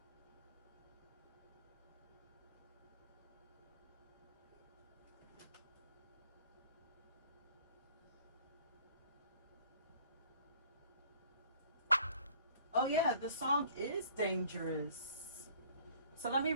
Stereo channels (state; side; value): inverted; both; correlation -0.54